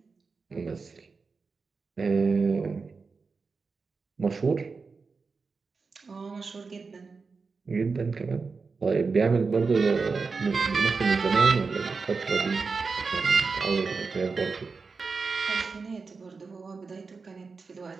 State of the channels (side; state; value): left; quieter; 4.6 dB